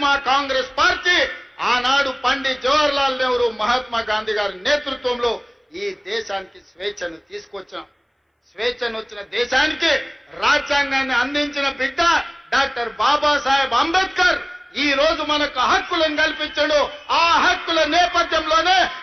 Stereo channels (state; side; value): identical; both; correlation 1.00